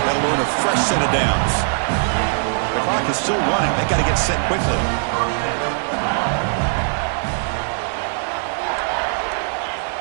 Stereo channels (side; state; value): left; silent; digital silence